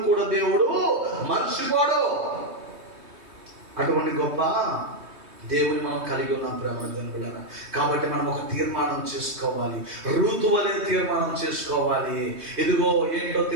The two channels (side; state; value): left; late; 3.2 ms